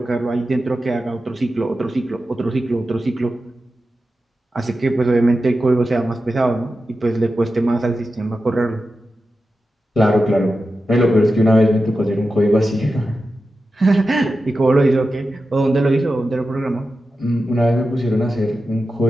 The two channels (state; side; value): normal; both; correlation 0.91